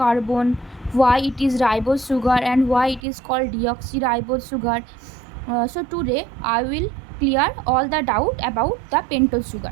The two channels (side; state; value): left; drops out; at 3.0 s